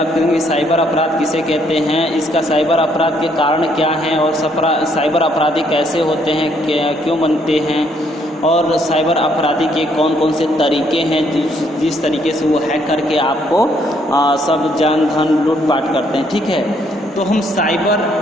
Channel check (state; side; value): normal; both; correlation 0.69